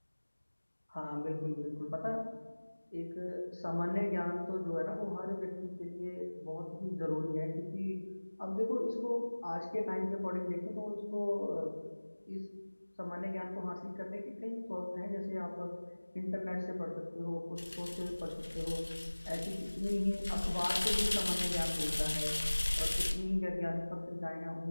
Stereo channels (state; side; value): inverted; both; correlation -1.00